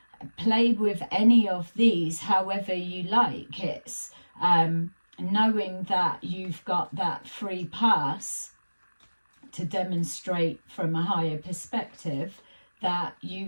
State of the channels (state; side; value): inverted; both; correlation -1.00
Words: play with any of these however you like. It's knowing that you've got that free pass to demonstrate from a higher perspective that